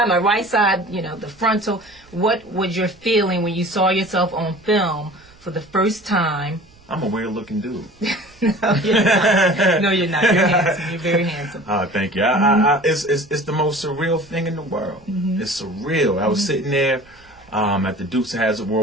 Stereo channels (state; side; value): noise; right; rumble, 28 dB below the sound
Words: my right side, you know, the frontal. What was your feeling when you saw yourself on film for the first time? I'm a weird-looking dude. No, you're not. No, you're not. You're handsome. You're very handsome. Oh, thank you. It's the most surreal thing in the world. It's surreal. I was sitting there at the Dukes of Hazzard